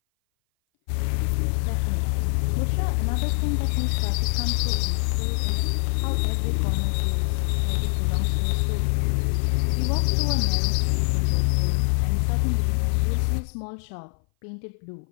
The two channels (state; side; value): silent; right; 58 dB below the other